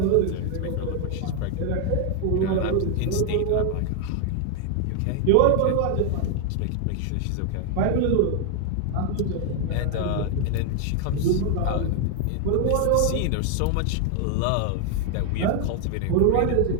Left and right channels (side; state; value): both; different; correlation 0.00